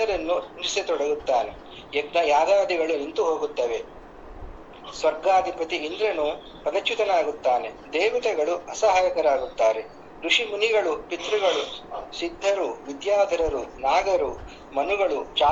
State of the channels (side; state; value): both; identical; correlation 1.00